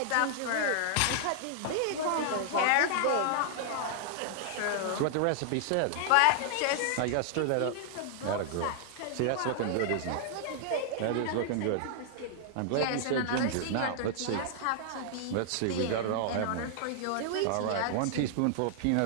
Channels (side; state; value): both; different; correlation -0.01